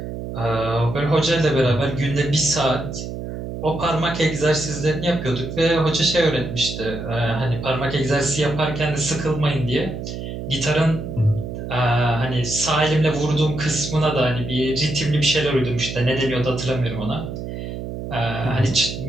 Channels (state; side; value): noise; right; hum, 7 dB below the sound